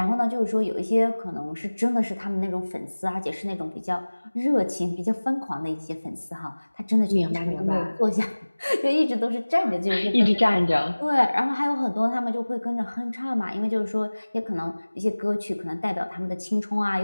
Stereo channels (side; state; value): both; inverted; correlation -1.00